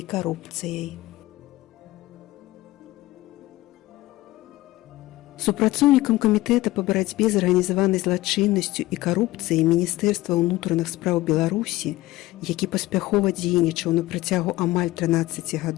Супрацоўнікам камітэта па барацьбе з арганізаванай злачыннасцю і карупцыяй Міністэрства ўнутраных спраў Беларусі, які паспяхова дзейнічаў на працягу амаль 13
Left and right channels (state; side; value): quieter; right; 18.0 dB